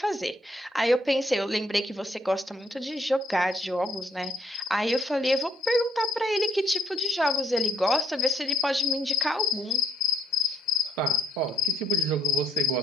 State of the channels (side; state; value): both; normal; correlation 0.72